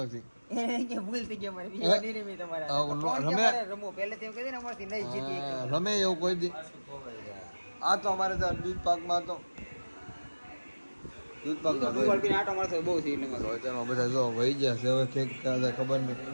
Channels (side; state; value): both; inverted; correlation -1.00